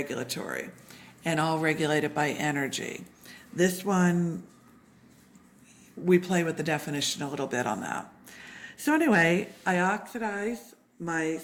and all regulated by energy. This one, we play with the definition a little bit on that. So anyway, I oxidize my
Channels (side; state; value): both; identical; correlation 1.00